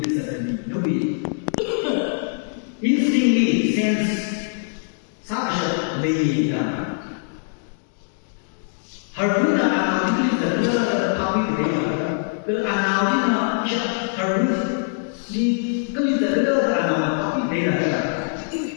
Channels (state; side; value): silent; right; digital silence